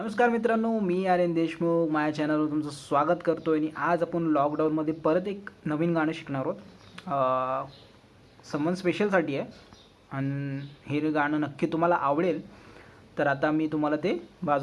मित्रांनो, मी आर्यन देशमुख माझ्या चॅनलवर तुमचं स्वागत करतो आणि आज आपण लॉकडाऊनमध्ये परत एक नवीन गाणं शिकणार आहोत. समवन स्पेशलसाठी आहे आणि हे गाणं नक्की तुम्हाला आवडेल. तर आता मी तुम्हाला ते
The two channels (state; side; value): identical; both; correlation 1.00